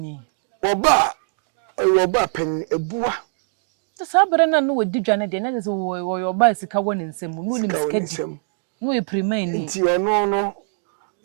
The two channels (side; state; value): left; silent; digital silence